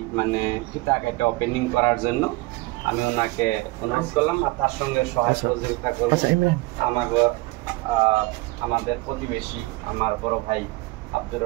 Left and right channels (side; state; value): left; quieter; 22.1 dB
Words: মানে ফিতা কাটা ওপেনিং করার জন্য আমি ওনাকে অনুরোধ করলাম আর তার সঙ্গে সহায় সহযোগিতা করব আমাদের প্রতিবেশী আমার বড় ভাই আব্দুর